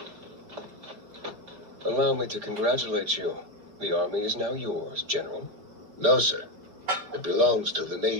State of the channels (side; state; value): left; late; 4.9 ms